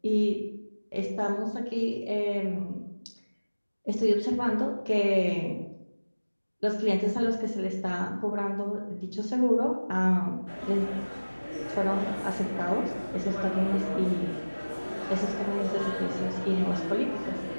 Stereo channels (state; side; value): inverted; both; correlation -1.00